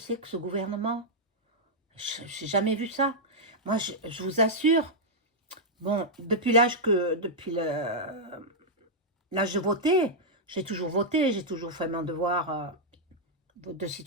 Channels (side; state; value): both; normal; correlation -0.06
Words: que ce gouvernement? Je n'ai jamais vu ça. Moi, je vous assure, bon, l'âge de voter, j'ai toujours fait mon devoir de